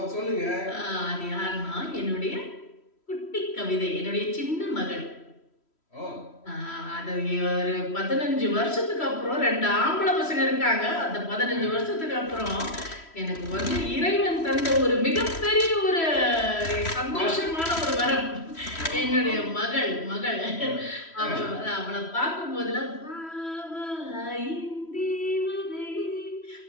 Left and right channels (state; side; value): late; right; 3.1 ms